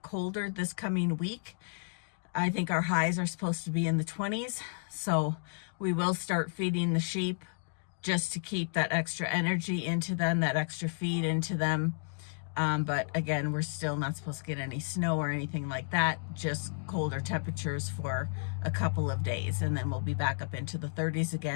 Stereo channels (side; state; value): right; silent; digital silence